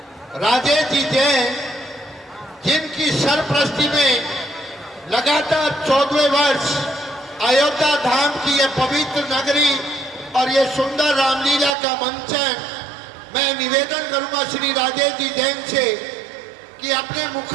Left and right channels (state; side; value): drops out; left; at 11.8 s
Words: राजेश जी जैन, जिनकी सरपरस्ती में लगातार 14वें वर्ष अयोध्या धाम की यह पवित्र नगरी और ये सुंदर रामलीला का मंचन, मैं निवेदन करूंगा श्री राजेश जी जैन से कि अपने